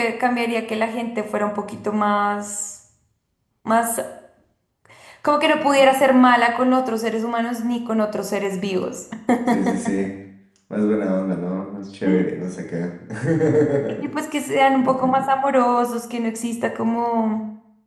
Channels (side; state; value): both; identical; correlation 1.00